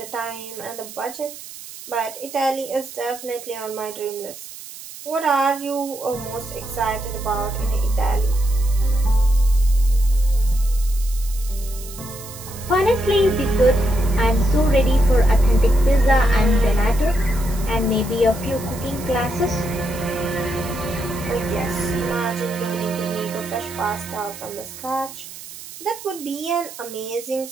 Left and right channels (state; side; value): noise; right; hiss, 14 dB below the sound